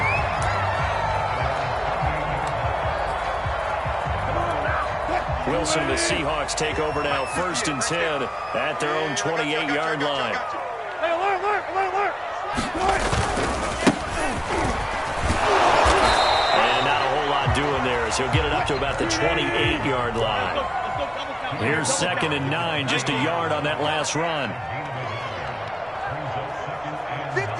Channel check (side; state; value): both; identical; correlation 1.00